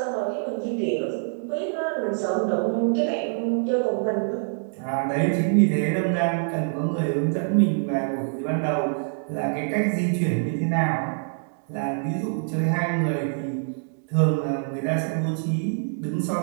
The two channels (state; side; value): silent; left; digital silence